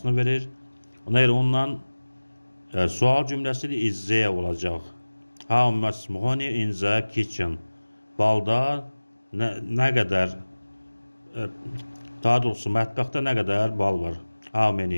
verir. Ona görə ondan sual cümləsidir. Is there olacaq. How much honey in the kitchen. Balda nə qədər, daha doğrusu mətbəxdə nə qədər bal var. How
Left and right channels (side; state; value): both; inverted; correlation -1.00